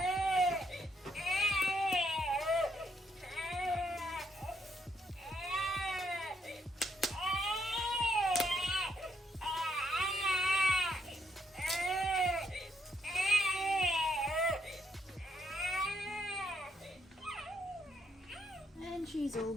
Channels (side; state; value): both; normal; correlation 0.73